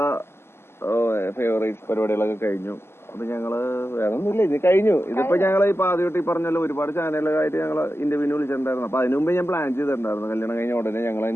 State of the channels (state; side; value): late; right; 0.12 ms